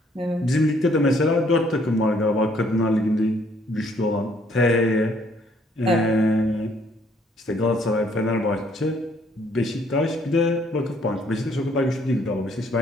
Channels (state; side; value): normal; both; correlation 0.65